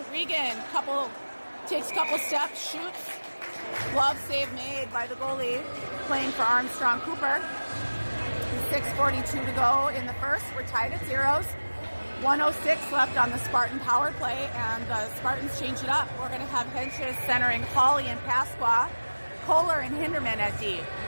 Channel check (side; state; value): both; inverted; correlation -1.00